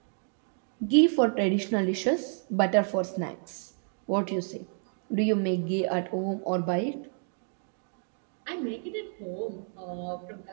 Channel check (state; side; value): silent; left; 56 dB below the other